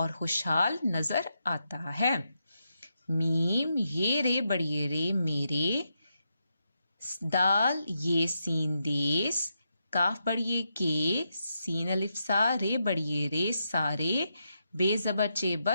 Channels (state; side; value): inverted; both; correlation -0.84